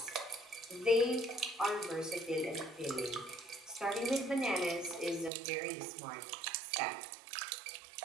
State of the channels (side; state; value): left; drops out; at 5.3 s